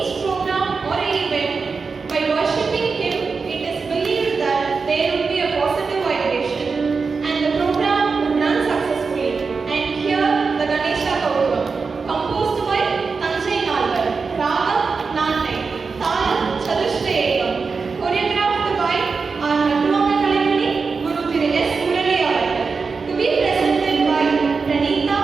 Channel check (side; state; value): left; quieter; 4.8 dB